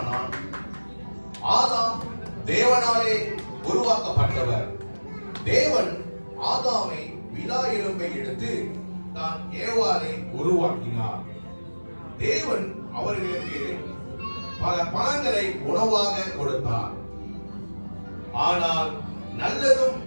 ஆதாம் தேவனாலே உருவாக்கப்பட்டவர். தேவன் ஆதாமை விலா எலும்பை எடுத்து தான் ஏவாளை உருவாக்கினார். தேவன் அவர்களுக்கு பல பழங்களை உணவாக கொடுத்தார். ஆனால் நல்லதும்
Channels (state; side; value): inverted; both; correlation -1.00